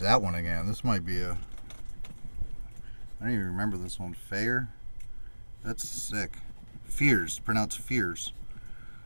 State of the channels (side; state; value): both; inverted; correlation -1.00